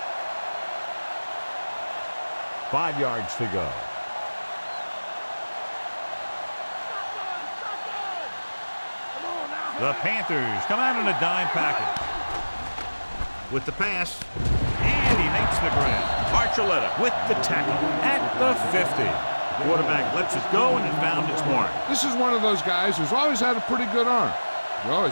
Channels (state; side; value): inverted; both; correlation -1.00